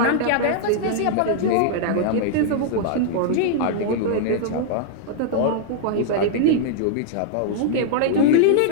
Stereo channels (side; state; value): both; different; correlation -0.01